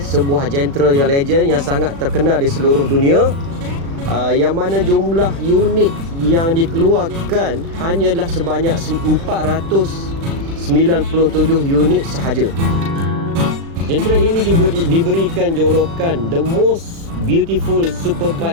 genre yang legend yang sangat terkenal di seluruh dunia, yang mana jumlah unit yang dikeluarkan hanyalah sebanyak 497 unit sahaja. Genre ini juga diberikan jolokan the most beautiful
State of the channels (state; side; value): late; left; 36 ms